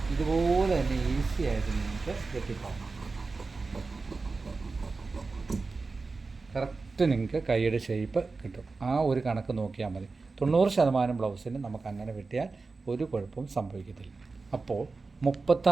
ഇതുപോലെ തന്നെ ഈസി ആയിട്ട് നിങ്ങൾക്ക് വെട്ടിപ്പോകാം. കറക്റ്റ് നിങ്ങൾക്ക് കൈയുടെ ഷേപ്പ് കിട്ടും. ആ ഒരു കണക്ക് നോക്കിയാൽ മതി. 90% ബ്ലൗസിന് നമുക്ക് അങ്ങനെ വെട്ടിയാൽ ഒരു കുഴപ്പവും സംഭവിക്കത്തില്ല. അപ്പോൾ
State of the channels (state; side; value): quieter; left; 4.0 dB